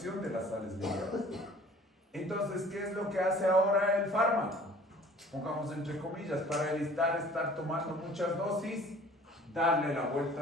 de las sales biliares. Entonces, ¿qué es lo que hace ahora el fármaco? Pongamos entre comillas, para evitar estar tomando muchas dosis, darle la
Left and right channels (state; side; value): normal; both; correlation 0.50